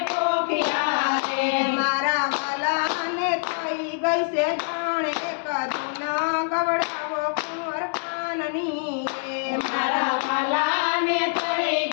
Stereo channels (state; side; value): silent; right; digital silence